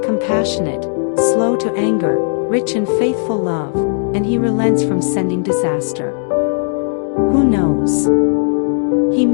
compassionate, slow to anger, rich in faithful love, and he relents from sending disaster. Who knows? He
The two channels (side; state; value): right; silent; digital silence